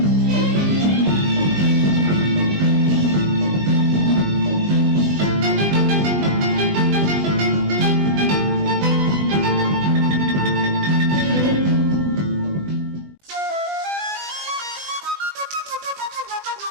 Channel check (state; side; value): late; left; 20 ms